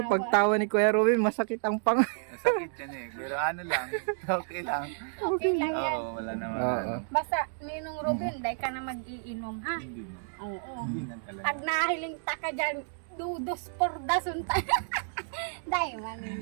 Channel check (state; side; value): silent; left; digital silence